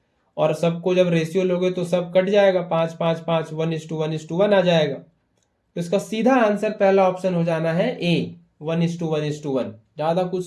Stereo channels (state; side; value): identical; both; correlation 1.00